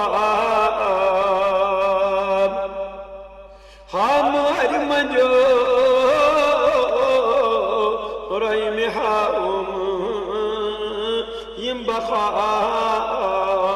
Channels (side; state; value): both; identical; correlation 1.00